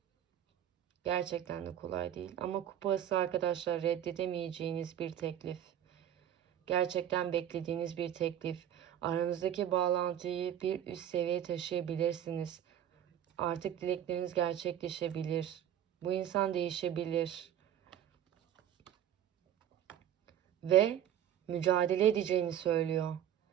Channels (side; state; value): left; quieter; 10.6 dB